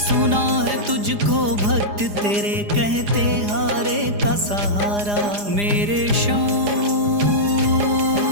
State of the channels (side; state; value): left; late; 4.9 ms